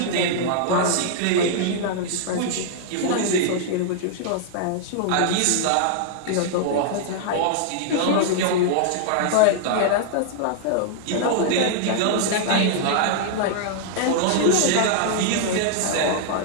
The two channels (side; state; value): both; different; correlation -0.01